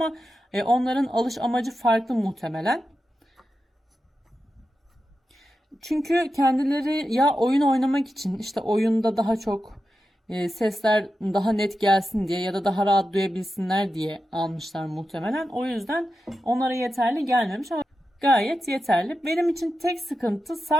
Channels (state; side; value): normal; both; correlation 0.90